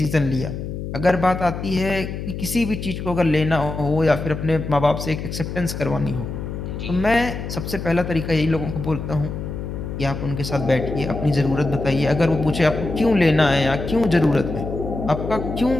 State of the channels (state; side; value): noise; left; hum, 6 dB below the sound